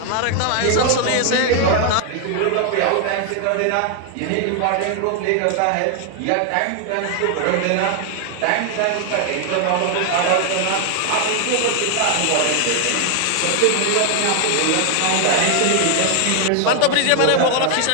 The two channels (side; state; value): both; different; correlation 0.00